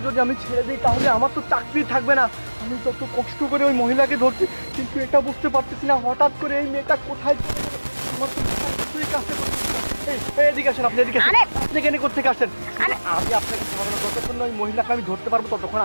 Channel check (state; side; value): inverted; both; correlation -1.00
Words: যদি আমি ছেড়ে দিই তাহলে আমার তো চাকরি থাকবে না। আমি যত কষ্ট করে ওই মহিলাকে ধরছি, কিন্তু এটা বুঝতে পারতেছি না হঠাৎ করে এই মেয়েটা কোথায় চলে গেলো। আমার তো কিছুই কাছে করতেছে না। এই এদিকে আসেন, আপনি এদিকে আসেন। আপনি কেন কোথেকে আসেন? আমি আপনাকে ছাড়বো না, যতক্ষণ না ওই মহিলাকে আমি ধরতে পারবো ততক্ষণ